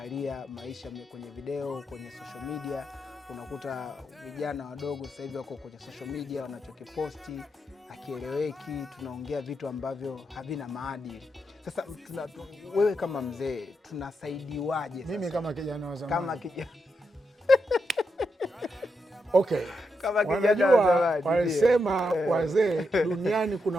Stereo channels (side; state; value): both; normal; correlation 0.84